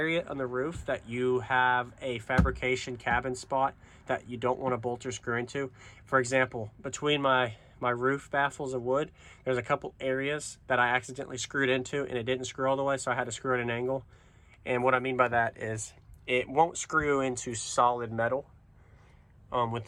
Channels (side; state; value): both; identical; correlation 1.00